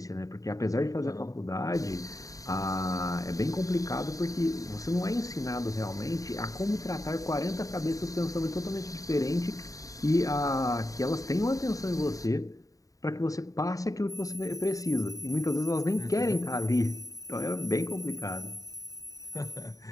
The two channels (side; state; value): right; late; 0.16 ms